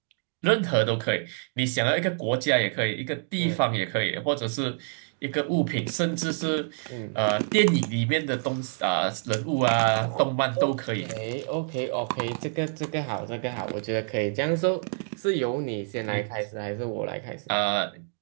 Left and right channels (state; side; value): silent; left; 60 dB below the other